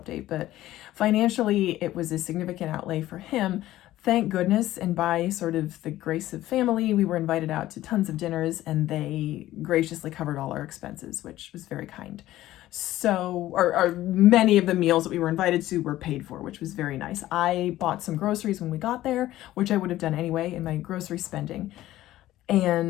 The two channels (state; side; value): quieter; right; 14.9 dB